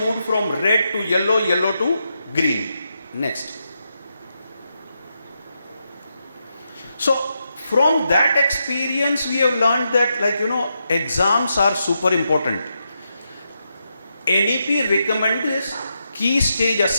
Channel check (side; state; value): both; inverted; correlation -0.84